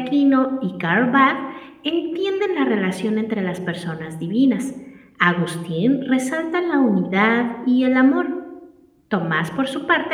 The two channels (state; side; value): identical; both; correlation 1.00